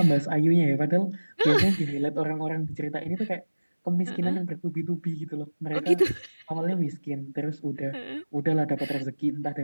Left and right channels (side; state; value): both; inverted; correlation -1.00